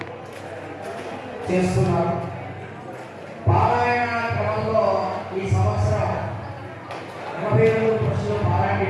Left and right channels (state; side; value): identical; both; correlation 1.00